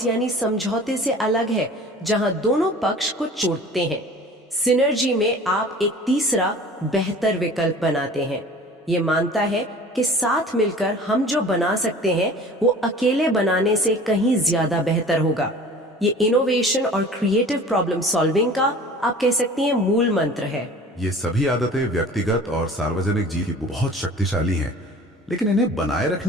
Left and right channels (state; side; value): normal; both; correlation 0.44